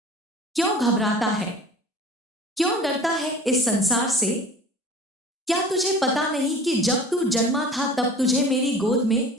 क्यों घबराता है? क्यों डरता है इस संसार से? क्या तुझे पता नहीं कि जब तू जन्मा था तब तुझे मेरी गोद में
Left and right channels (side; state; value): both; normal; correlation 0.43